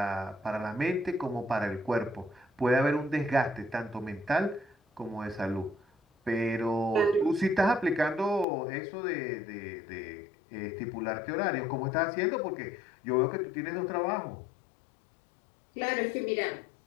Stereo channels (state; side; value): drops out; right; at 8.5 s